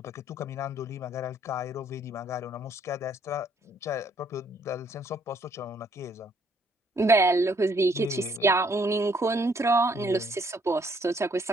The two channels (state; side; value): normal; both; correlation 0.66